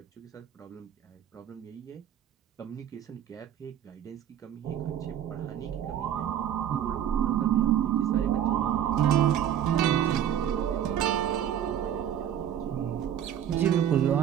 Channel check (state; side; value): quieter; left; 10.1 dB